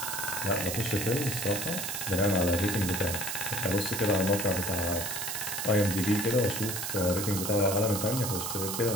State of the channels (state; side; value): noise; right; hiss, 3 dB below the sound